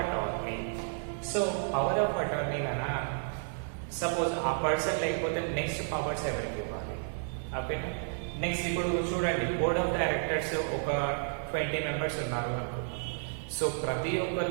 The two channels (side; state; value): left; silent; digital silence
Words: attorney. So power of attorney అనా సపోజ్ ఆ పర్సన్ లేకపోతే నెక్స్ట్ పవర్స్ ఎవరికి ఇవ్వాలి? ఓకేనా. నెక్స్ట్ ఇప్పుడు చూడండి, బోర్డ్ ఆఫ్ డైరెక్టర్స్ ఒక 20 మెంబర్స్ ఉన్నారు అనుకుందాం. సో ప్రతి